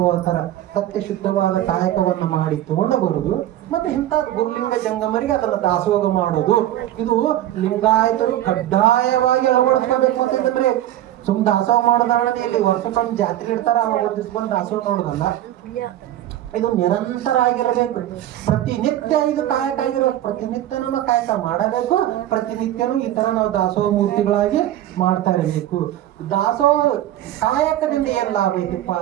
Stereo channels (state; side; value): quieter; left; 13.1 dB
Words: ಅಂತಾರ. ಸತ್ಯ ಶುದ್ಧವಾದ ಕಾಯಕವನ್ನ ಮಾಡಿ ತಗೊಂಡು ಬರುದು. ಮತ್ತೆ ಇಂಥ ಗುರುಲಿಂಗ ಜಂಗಮರಿಗೆ ಅದನ್ನ ದಾಸೋಹ ಮಾಡೋದು. ಇದು ಲಿಂಗಾಯತರು ಕಡ್ಡಾಯವಾಗಿ ಅಳವಡಿಸ್ಕೋಬೇಕು ಅಂತಂದ್ರೆ, ಸುಮ್ ದಾಸೋಹ ಮಾಡೋದಲ್ಲ. ಇಲ್ಲಿ ವರ್ಷಕ್ಕೊಮ್ಮೆ ಜಾತ್ರೆ ಇಡ್ತಾರ, ಅವಾಗ ಬಂದು ದಾಸೋಹ ನೋಡೋದಲ್ಲ. ಇದು ನಿರಂತರ ಆಗಿರಬೇಕು. ಪ್ರತಿನಿತ್ಯ ಇದು ಕಾಯಕ ಆಗಿರೋದು. ಪ್ರತಿನಿತ್ಯನೂ ಕಾಯಕ ಮಾಡಬೇಕು. ಪ್ರತಿನಿತ್ಯನೂ ಈ ತರ ನಾವು ದಾಸೋಹ ಮೂರ್ತಿಗಳಾಗಿ ಮಾಡ್ತಾ ಇರಬೇಕು. ದಾಸೋಹ ಕಾಯಕದಿಂದ ಏನ್ ಲಾಭ ಐತಿಪ್ಪ